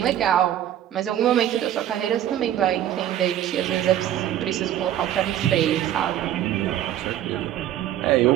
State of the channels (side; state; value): left; quieter; 11.7 dB